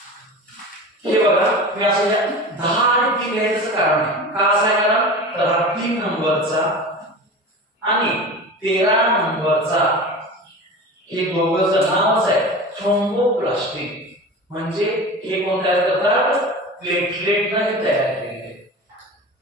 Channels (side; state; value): both; normal; correlation 0.32